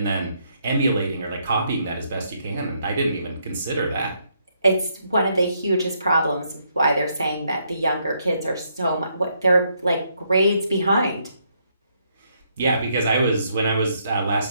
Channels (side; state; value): both; inverted; correlation -0.74